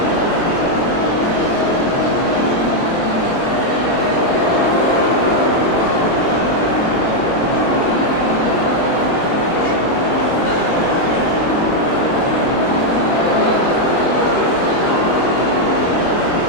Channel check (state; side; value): late; right; 24 ms